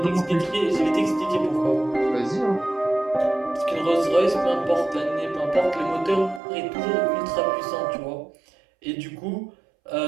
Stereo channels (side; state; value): left; drops out; at 6.4 s